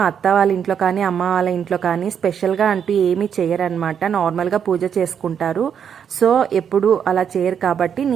అత్త వాళ్ళ ఇంట్లో కానీ అమ్మ వాళ్ళ ఇంట్లో కానీ స్పెషల్గా అంటూ ఏమీ చేయరనమాట. నార్మల్గా పూజ చేసుకుంటారు. సో ఎప్పుడు అలా చేయరు కాబట్టి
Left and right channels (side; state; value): left; quieter; 7.9 dB